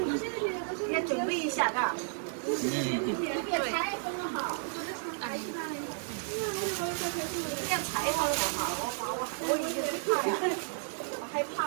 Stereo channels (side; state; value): left; silent; digital silence